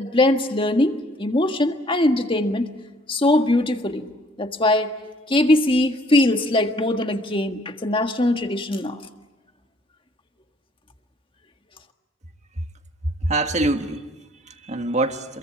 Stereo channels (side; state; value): both; normal; correlation 0.61